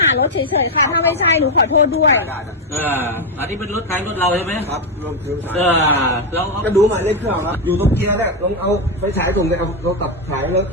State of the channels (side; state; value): both; normal; correlation 0.05